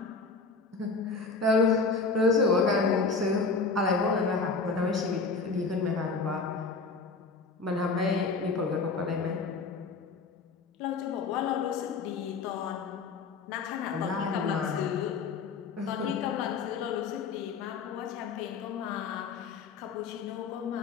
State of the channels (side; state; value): right; quieter; 4.4 dB